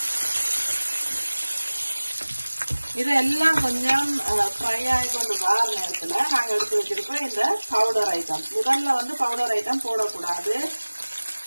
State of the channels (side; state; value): both; inverted; correlation -1.00